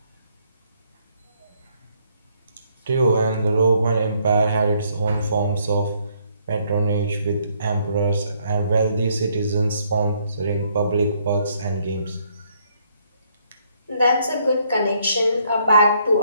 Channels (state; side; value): inverted; both; correlation -0.70